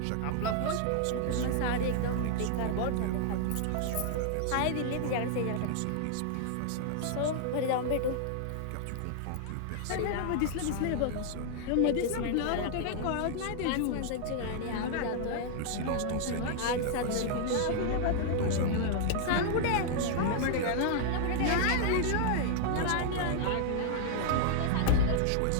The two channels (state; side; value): different; both; correlation -0.01